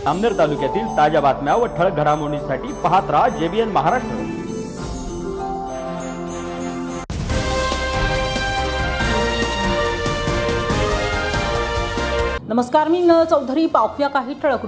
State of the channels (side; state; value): both; identical; correlation 1.00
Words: अमनेर तालुक्यातील ताज्या बातम्या व ठळक घडामोडींसाठी पाहत राहा JBN महाराष्ट्र। नमस्कार, मी नल चौधरी। पाहूया काही ठळक